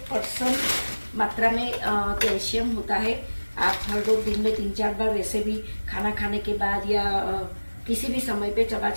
मात्रा में कैल्शियम होता है। आप हर रोज दिन में 3-4 बार वैसे भी खाना खाने के बाद या किसी भी समय पे चबा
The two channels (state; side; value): inverted; both; correlation -1.00